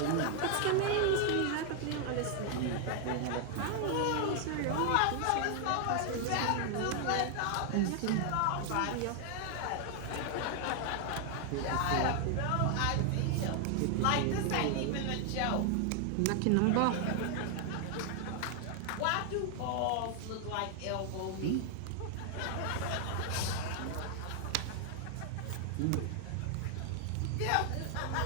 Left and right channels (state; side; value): different; both; correlation 0.00